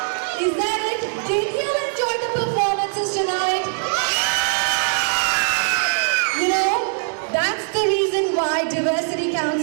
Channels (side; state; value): left; silent; 63 dB below the other